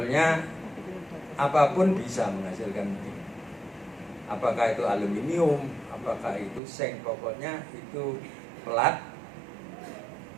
apapun bisa menghasilkan ini. Apakah itu aluminium, apakah itu seng, pokoknya itu pelat,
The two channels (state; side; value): drops out; left; at 6.6 s